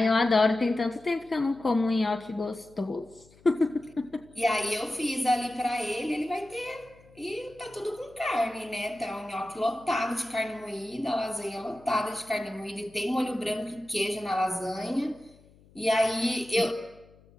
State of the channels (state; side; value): noise; left; hum, 27 dB below the sound